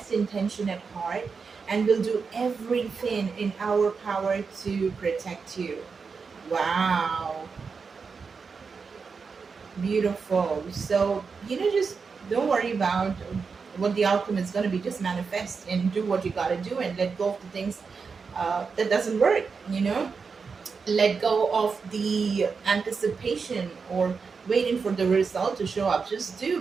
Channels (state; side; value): quieter; left; 5.2 dB